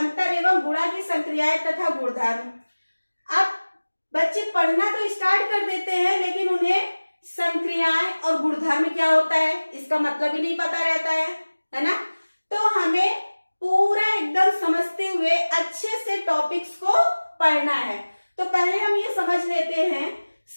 एवं गुणा की संक्रियाएं तथा गुणधर्म। अब बच्चे पढ़ना तो स्टार्ट कर देते हैं, लेकिन उन्हें संक्रियाएं और गुणधर्म क्या होता है इसका मतलब ही नहीं पता रहता है ना। तो हमें पूरा एकदम समझते हुए अच्छे से टॉपिक्स को पढ़ना है। तो पहले हम ये समझ लेते हैं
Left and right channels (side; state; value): both; inverted; correlation -1.00